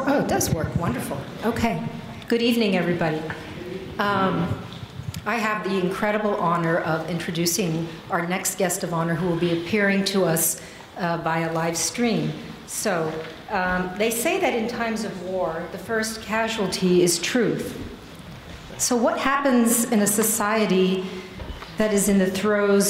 Oh, it does work. Wonderful. Okay. Good evening, everybody. I have the incredible honor of introducing our next guest of honor who will be appearing to us via live stream. So they say that in times of war, the first casualty is truth. So what happens in a society that is in the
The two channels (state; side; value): identical; both; correlation 1.00